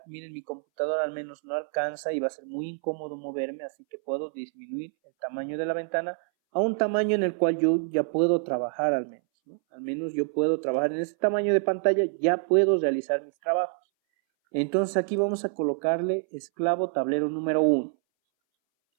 Miren, mi computadora al menos no alcanza y va a ser muy incómodo moverme, así que puedo disminuir el tamaño de la ventana a un tamaño en el cual yo ya puedo trabajar al menos, ¿no? Al menos yo puedo trabajar en ese tamaño de pantalla, ya puedo realizar mis trabajos. Entonces aquí vamos a colocarle esclavo tablero número 1.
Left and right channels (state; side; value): silent; left; 60 dB below the other